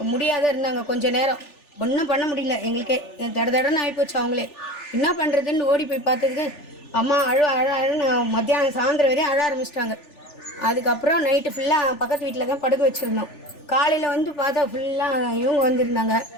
முடியாத இருந்தாங்க கொஞ்ச நேரம். ஒன்றும் பண்ண முடியல எங்களுக்கே. தடன்னு ஆகிப்போச்சு. அவங்களே என்ன பண்ணுறதுன்னு ஓடி போய் பார்த்ததுக்கு அம்மா அழுன்னு மத்தியானம் சாயந்தரம் வரையும் அழ ஆரம்பிச்சிட்டாங்க. அதுக்கப்புறம் நைட்டு ஃபுல்லாக பக்கத்து வீட்டில் தான் படுக்க வச்சுருந்தோம். காலையில் பார்த்தா ஃபுல்லாக இவங்க வந்திருந்தாங்க,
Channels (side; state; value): right; late; 3.4 ms